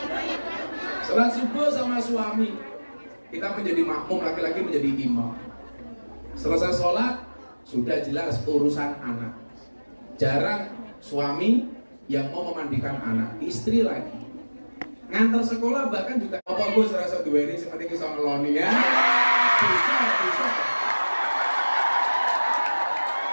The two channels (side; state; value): both; inverted; correlation -1.00